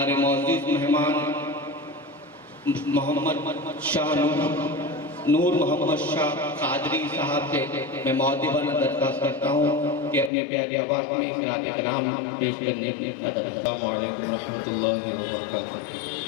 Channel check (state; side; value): drops out; right; at 10.3 s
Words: معزز مہمان محمد شاہ نور محمد شاہ قادری صاحب سے میں مؤدبانہ درخواست کرتا ہوں کہ اپنے پیاری آواز میں اقرار کلام پیش کرنے کی اجازت۔ السلام علیکم ورحمۃ اللہ وبرکاتہ۔